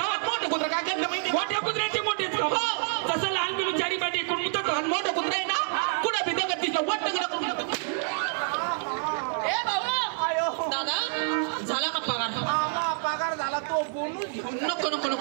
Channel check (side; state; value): left; silent; 60 dB below the other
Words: मोठं कुत्र काय करतं माहिती? मोठ्या कुत्र्याचे मोठेच तसं लहान पिल्लू चारी पाय टेकून जातो. मोठं कुत्र आहे ना कुठं बी दगड दिसलं वट्ट करून. ए भाऊ दादा झाला का पगार? पगार झाला तो बोनस. नको नको